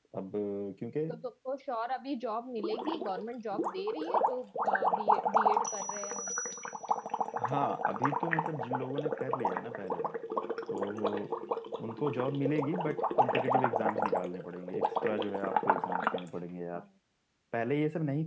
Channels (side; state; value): both; identical; correlation 1.00